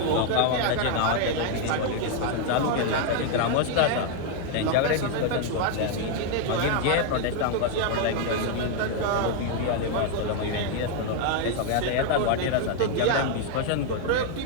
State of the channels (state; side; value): different; both; correlation 0.00